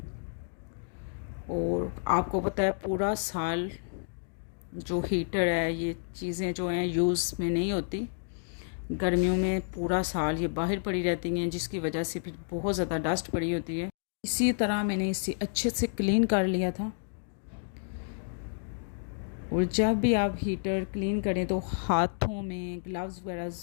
और आपको पता है पूरा साल जो हीटर है, ये चीज़ें जो हैं यूज़ में नहीं होती। गर्मियों में पूरा साल ये बाहर पड़ी रहती हैं, जिसकी वजह से फिर बहुत ज़्यादा डस्ट पड़ी होती है। इसी तरह मैंने इसे अच्छे से क्लीन कर लिया था। और जब भी आप हीटर क्लीन करें तो हाथों में ग्लव्स वगैरह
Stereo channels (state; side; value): silent; right; digital silence